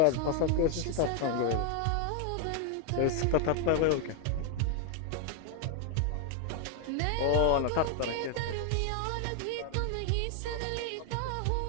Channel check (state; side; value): different; both; correlation 0.00